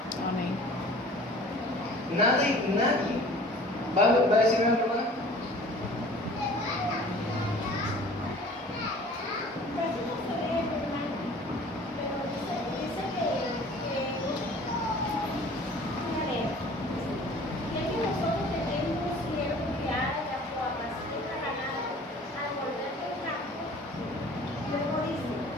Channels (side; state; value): both; normal; correlation 0.47